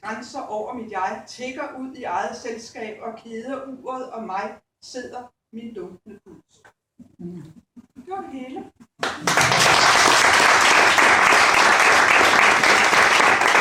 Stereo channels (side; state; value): both; identical; correlation 1.00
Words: grænser over mit jeg tikker ud i eget selskab, og keder uret og mig sidder min dunkende puls. Det var det hele.